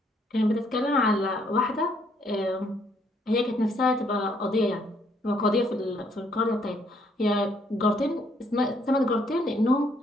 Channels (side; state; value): both; normal; correlation 0.68